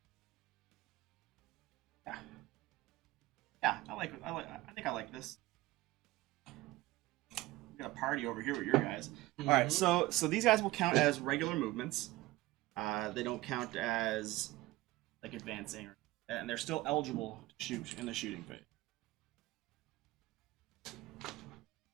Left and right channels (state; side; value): quieter; left; 18.8 dB